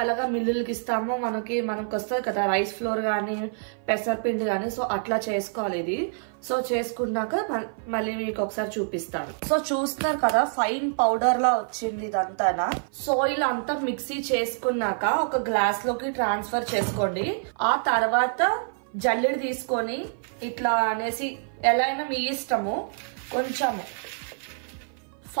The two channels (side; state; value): left; silent; 55 dB below the other